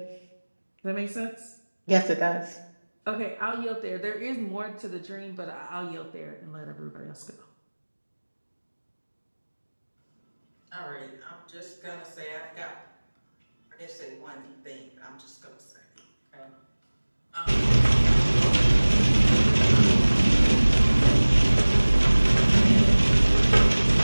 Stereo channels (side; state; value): both; inverted; correlation -1.00